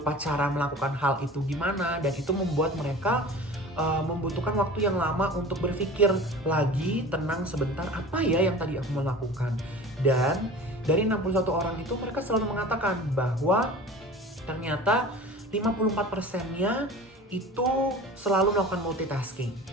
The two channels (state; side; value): normal; both; correlation 0.38